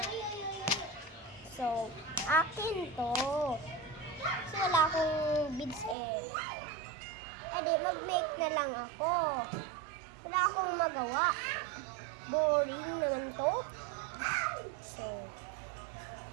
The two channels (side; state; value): left; drops out; at 6.0 s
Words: So, akin to. Kasi wala akong beads eh. Edi, mag-make na lang ako. Wala akong magawa. Boring naman to. So,